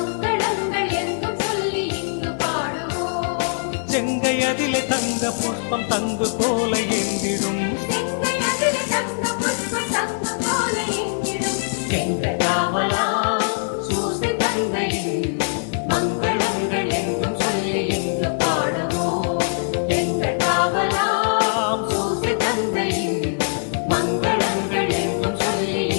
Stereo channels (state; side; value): silent; right; 64 dB below the other